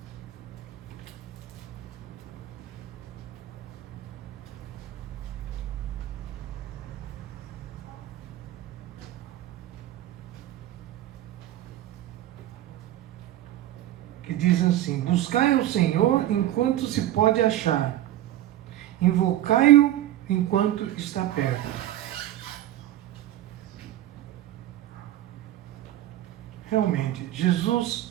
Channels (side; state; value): left; quieter; 13.6 dB